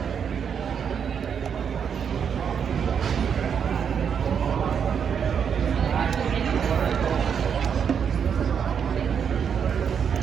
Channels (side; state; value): left; quieter; 7.4 dB